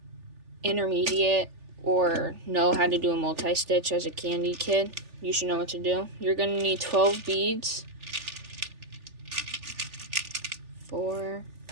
intermediate or know how to do a multi-stitch as a candy kid, you should know what to do. You're gonna need 12 beads. 4,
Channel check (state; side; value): late; left; 3.4 ms